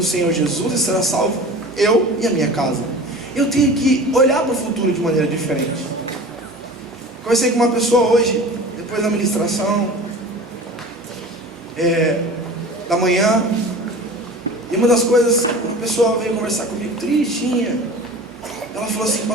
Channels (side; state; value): both; normal; correlation 0.38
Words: Senhor Jesus e será salvo eu e a minha casa. Eu tenho que olhar para o futuro de maneira diferente. Conversei com uma pessoa hoje, depois da ministração da manhã, e uma das coisas, uma pessoa veio conversar comigo tristinha. Ela falou assim: